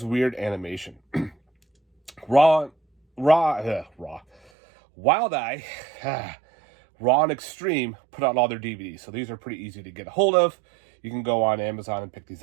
weird animation. Wild Eye, Raw and Extreme put out all their DVDs, so these are pretty easy to get a hold of. You can go on Amazon and pick these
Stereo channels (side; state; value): left; drops out; at 4.5 s